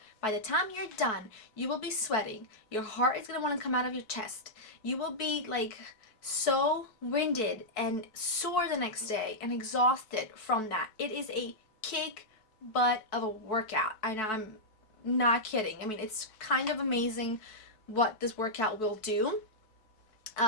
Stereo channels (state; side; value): late; right; 4.6 ms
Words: By the time you're done, you will be sweating. Your heart is gonna want to come out of your chest. You will be like so winded and sore the next day and exhausted from that. It is a kick butt of a workout. I'm not kidding. I mean, it's kind of amazing what this workout will do.